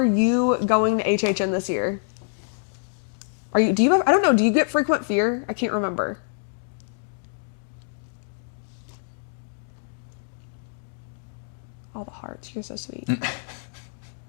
you going to HHN this year? I don't know, do you get frequent fear? I can't remember. All the hearts, you're so sweet.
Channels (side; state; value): right; silent; digital silence